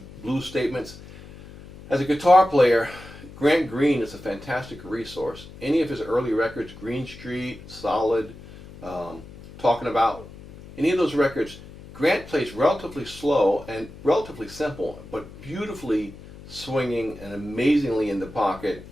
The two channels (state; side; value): noise; left; hum, 17 dB below the sound